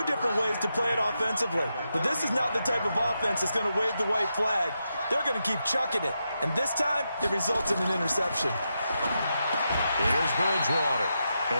different ways to play it offensively. But this is not the type of offense that's going to wave the white flag. They're going to keep chucking it. And this time, it results in an interception. Here's Bridgewater.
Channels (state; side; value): inverted; both; correlation -0.86